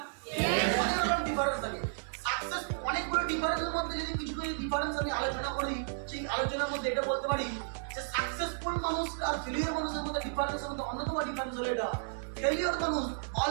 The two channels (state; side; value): silent; left; 56 dB below the other